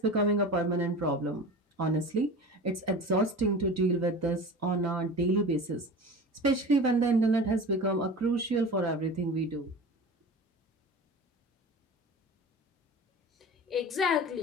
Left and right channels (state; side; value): normal; both; correlation 0.35